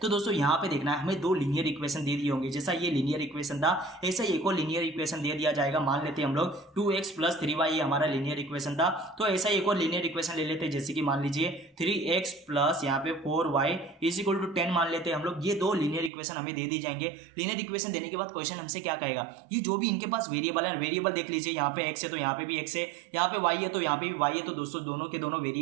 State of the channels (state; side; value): drops out; left; at 16.1 s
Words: तो दोस्तों यहाँ पे देखना है हमें 2 लीनियर इक्वेशन दे दिए होंगे, जैसा ये लीनियर इक्वेशन था ऐसा ही एक और लीनियर इक्वेशन दे दिया जाएगा। मान लेते हैं हम लोग 2x प्लस 3y ये हमारा लीनियर इक्वेशन था, तो ऐसा ही एक और लीनियर इक्वेशन ले लेते हैं, जैसे कि मान लीजिए 3x प्लस यहाँ पे 4y इज इक्वल टू 10 मान लेते हैं हम लोग। ये 2 लीनियर इक्वेशन हमें दे दी जाएंगे। लीनियर इक्वेशन देने के बाद क्वेश्चन हमसे क्या कहेगा, ये जो भी इनके पास वेरिएबल है, वेरिएबल देख लीजिए, यहाँ पे x है तो यहाँ पे भी x है, यहाँ पे y है तो यहाँ पे भी y है। तो दोस्तों दोनों के दोनों